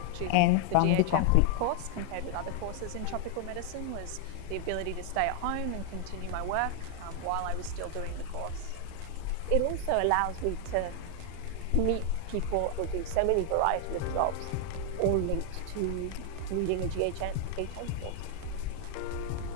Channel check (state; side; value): different; both; correlation 0.00